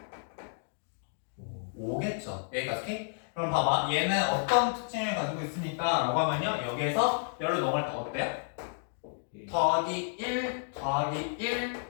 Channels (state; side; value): silent; right; digital silence